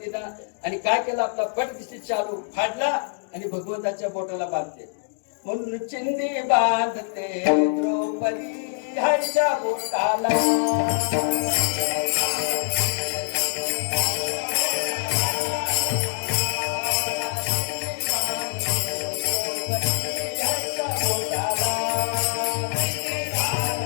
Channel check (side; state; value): right; silent; digital silence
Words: आणि काय केलं आपला पटदिशी चालू फाडला आणि भगवंताच्या बोटाला बांधते म्हणून चिंदी बांधते द्रौपदी हरच्या बोटाला